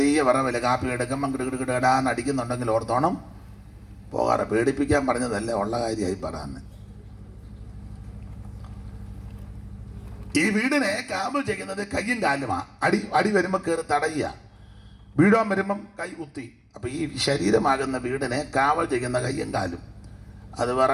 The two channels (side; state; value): both; identical; correlation 1.00